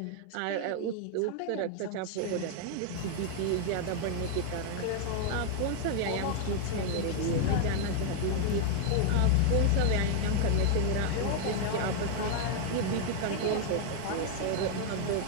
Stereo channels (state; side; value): different; both; correlation 0.00